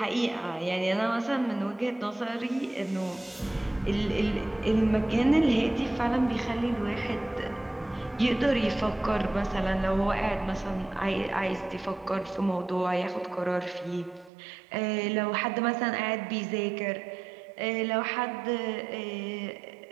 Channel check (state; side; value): drops out; left; at 14.3 s